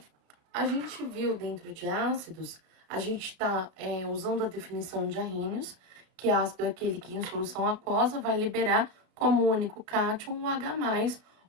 a gente viu dentro de ácidos, a gente está usando a definição de Arrhenius, que ácido é aquele que em solução aquosa vai liberar como único cátion o H+,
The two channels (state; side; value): late; left; 33 ms